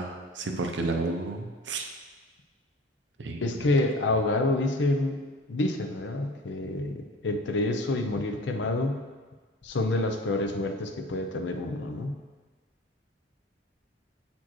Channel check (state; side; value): normal; both; correlation 0.41